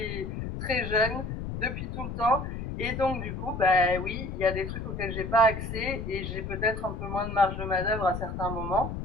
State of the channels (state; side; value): noise; left; rumble, 6 dB below the sound